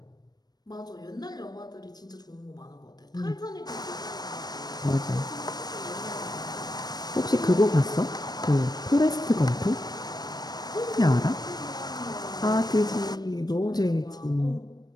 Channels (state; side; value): late; right; 0.19 ms